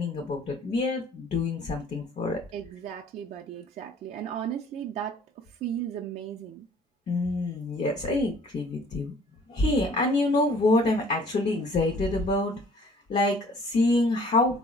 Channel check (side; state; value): both; normal; correlation 0.54